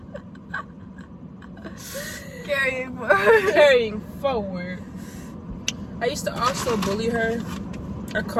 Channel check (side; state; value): both; identical; correlation 1.00